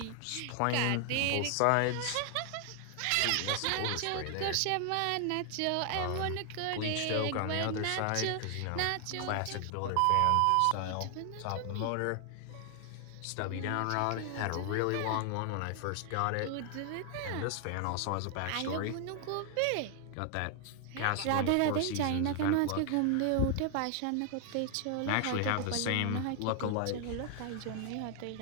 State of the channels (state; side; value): different; both; correlation 0.00